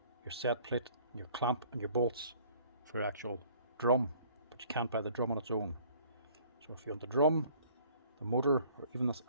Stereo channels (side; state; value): both; inverted; correlation -0.55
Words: your set plate, your clamp and your bolts for your actual drum, but you can't buy the drum on its own. So if you want the drum, the motor, or even this